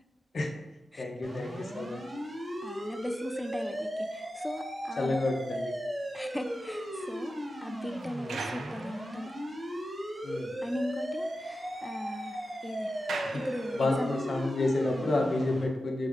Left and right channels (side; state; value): both; normal; correlation 0.92